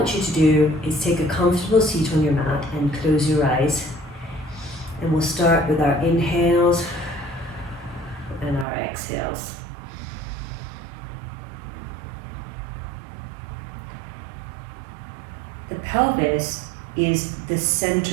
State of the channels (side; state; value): left; drops out; at 8.7 s